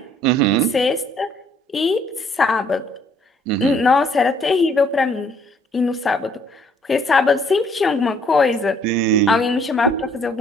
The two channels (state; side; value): normal; both; correlation 0.63